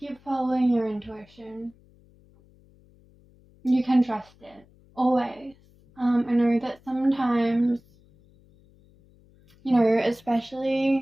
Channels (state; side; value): noise; left; hum, 29 dB below the sound